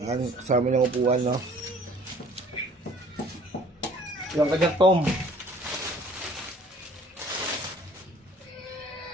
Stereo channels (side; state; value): both; normal; correlation 0.54